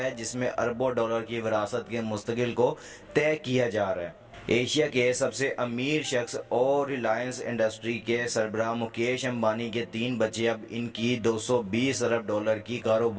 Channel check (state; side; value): identical; both; correlation 1.00